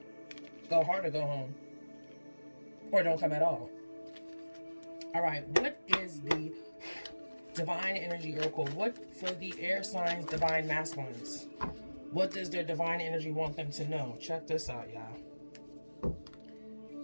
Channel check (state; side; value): inverted; both; correlation -1.00